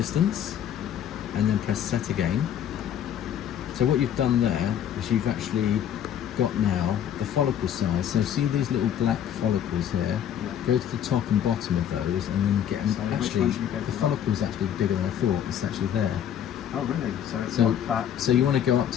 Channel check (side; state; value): right; quieter; 9.7 dB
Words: and then press set again. So what you've done there is you've actually got now the follicle size. So see these little black follicles here? Go to the top and bottom of those and then get them. So which Actually, one should we go the for? follicle's actually bigger than I thought. It's actually there. Oh really? So it's So, not that. so you want to go up